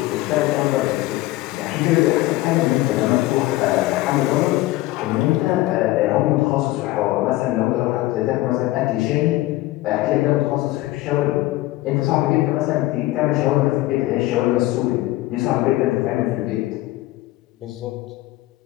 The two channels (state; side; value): quieter; right; 17.7 dB